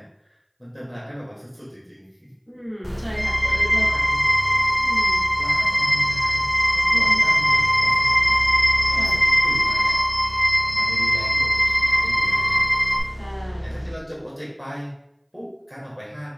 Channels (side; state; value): both; identical; correlation 1.00